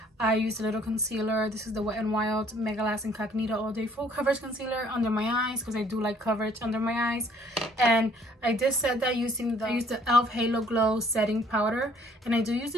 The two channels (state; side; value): normal; both; correlation 0.60